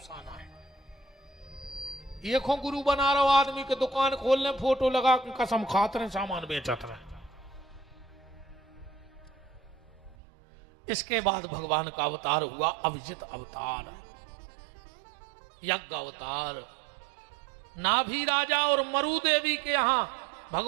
है। एक हो गुरु बना रहा आदमी के दुकान खोलने फोटो लगा कसम खाते रहे, सामान बेचते रहे। इसके बाद भगवान का अवतार हुआ अभिजित अवतार, यज्ञ अवतार। नाभि राजा और मरु देवी के यहां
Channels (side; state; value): left; drops out; at 10.2 s